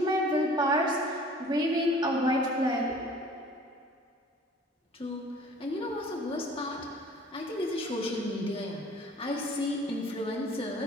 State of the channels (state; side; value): normal; both; correlation 0.50